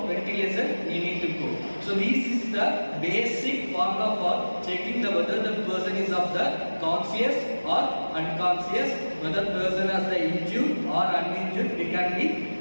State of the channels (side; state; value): both; inverted; correlation -1.00